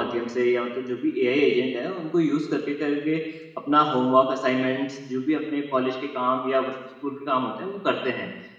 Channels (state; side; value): identical; both; correlation 1.00